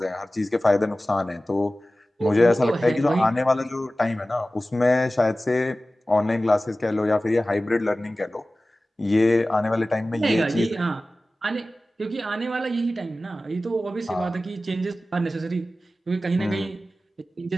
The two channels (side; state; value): both; normal; correlation 0.96